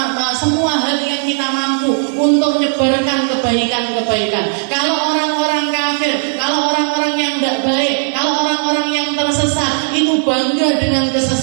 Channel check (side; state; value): left; silent; digital silence